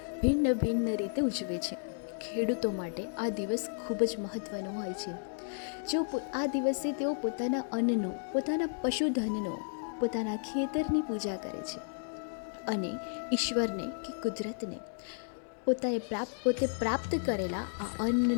ભિન્ન ભિન્ન રીતે ઉજવે છે. ખેડૂતો માટે આ દિવસ ખૂબ જ મહત્ત્વનો હોય છે. જો આ દિવસે તેઓ પોતાના અન્નનો, પોતાના પશુધનનો, પોતાના ખેતરની પૂજા કરે છે અને ઈશ્વરને કે કુદરતને પોતે પ્રાપ્ત કરેલા આ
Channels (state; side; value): silent; right; digital silence